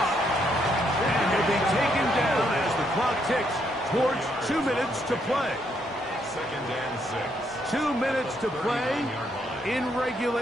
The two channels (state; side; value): normal; both; correlation 0.74